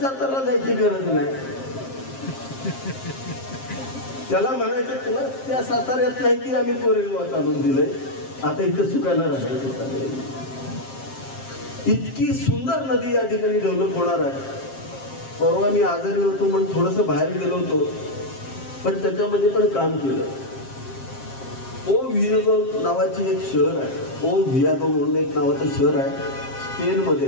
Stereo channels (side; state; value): right; late; 7.5 ms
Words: सातारला जायची गरज नाही. त्याला म्हणायचं तुला त्या साताऱ्यात नाही की आम्ही कोरेगावात आणून दिलंय, आता इथं सुखानं राहायचं. इतकी सुंदर नदी या ठिकाणी डेव्हलप होणार आहे. परवा मी आजारी होतो म्हणून थोडंसं बाहेर गेलो होतो, पण त्याच्यामध्ये पण काम केलं. ओ व्हियादो नावाची एक शहर आहे, ओ व्हियादो म्हणून एक नावाचं शहर आहे, स्पेनमध्ये